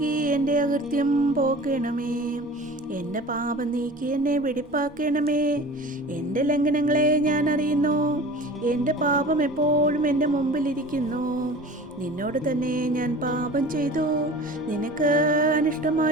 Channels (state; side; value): normal; both; correlation 0.39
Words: എൻ്റെ അകൃത്യം പോക്കണമേ. എൻ്റെ പാപം നീക്കി എന്നെ വെടിപ്പാക്കണമേ. എൻ്റെ ലംഘനങ്ങളെ ഞാൻ അറിയുന്നു, എൻ്റെ പാപം എപ്പോഴും എൻ്റെ മുമ്പിലിരിക്കുന്നു. നിന്നോട് തന്നെ ഞാൻ പാപം ചെയ്തു, നിനക്ക്